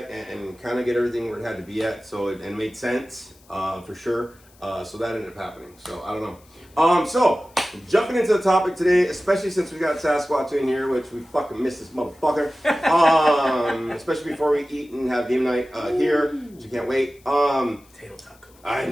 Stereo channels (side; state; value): left; noise; hiss, 29 dB below the sound